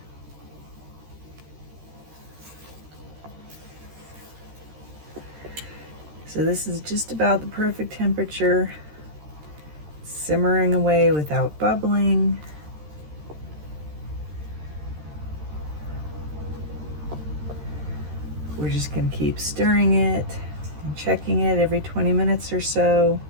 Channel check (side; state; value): left; late; 13 ms